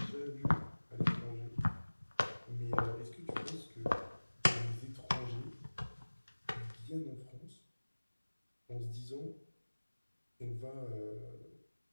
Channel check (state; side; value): inverted; both; correlation -1.00